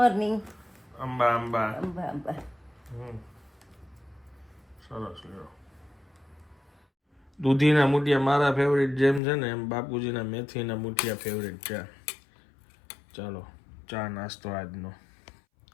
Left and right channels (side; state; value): right; drops out; at 9.2 s